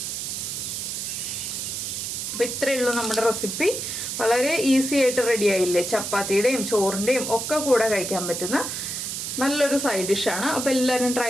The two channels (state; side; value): noise; right; hiss, 4 dB below the sound